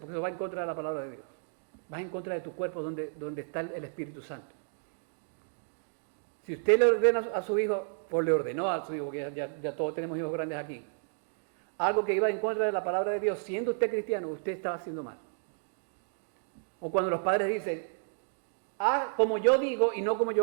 eso va en contra de la palabra de Dios. Va en contra de tu cuerpo donde está el Espíritu Santo. Si usted le ordena a su hijo, o le ordenó a su hijo, porque ya todos tenemos hijos grandes aquí, algo que iba en contra de la palabra de Dios, siendo usted cristiano, usted estaba haciendo mal. O cuando los padres dicen, haz como yo digo y no como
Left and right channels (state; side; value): silent; left; digital silence